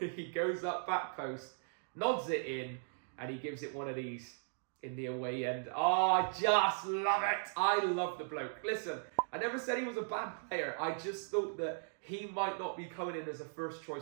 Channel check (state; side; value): silent; left; digital silence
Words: goes up back post, nods it in, and he gives it one of these in the away end. Oh, I just love it. I love the bloke. Listen, I never said he was a bad player. I just thought that he might not be coming in as a